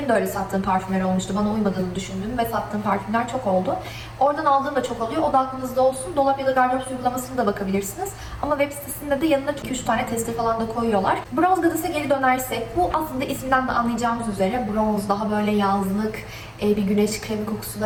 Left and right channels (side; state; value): both; identical; correlation 1.00